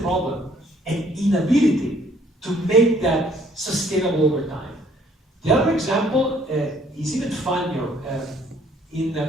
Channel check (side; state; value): both; normal; correlation 0.62